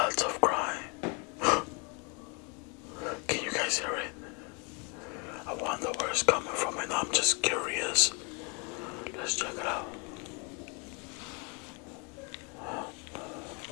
of crying. Can you guys hear it? I wonder where it's coming from, and I'm just curious. Let's check it out.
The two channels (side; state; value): right; quieter; 33.0 dB